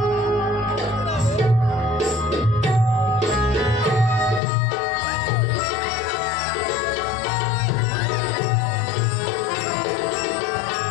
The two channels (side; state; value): right; drops out; at 4.4 s